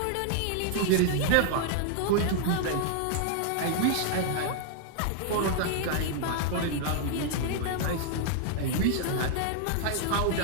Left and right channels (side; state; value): both; different; correlation 0.00